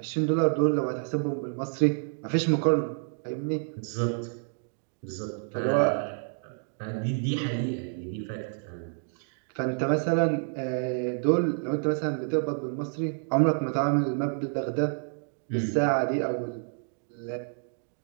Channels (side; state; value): left; silent; 59 dB below the other